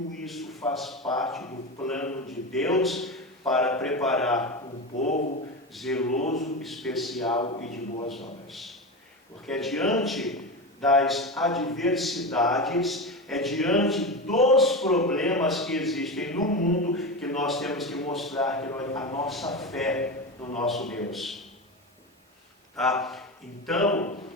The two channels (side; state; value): both; normal; correlation 0.21